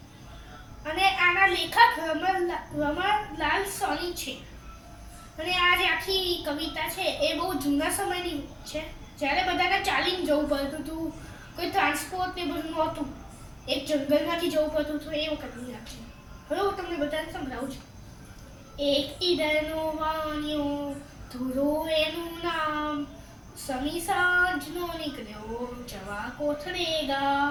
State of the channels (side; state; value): both; identical; correlation 1.00